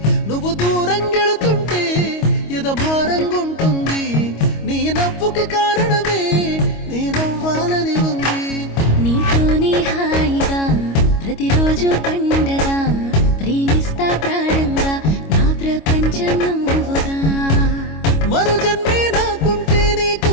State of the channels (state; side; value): late; right; 25 ms